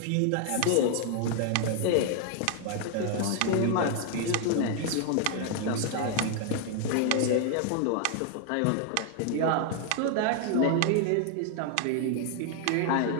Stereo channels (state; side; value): different; both; correlation 0.00